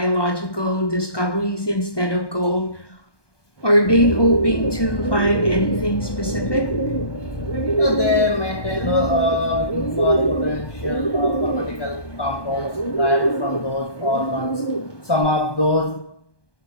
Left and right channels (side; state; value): right; late; 1.2 ms